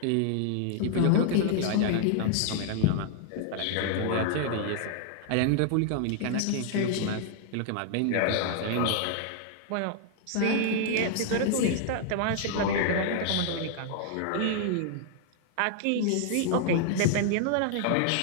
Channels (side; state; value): both; different; correlation 0.00